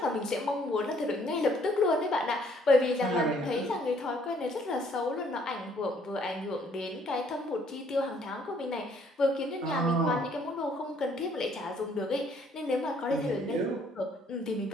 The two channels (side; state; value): both; normal; correlation 0.63